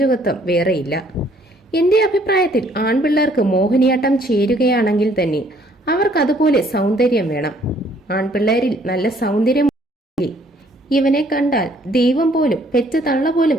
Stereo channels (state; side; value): normal; both; correlation 0.63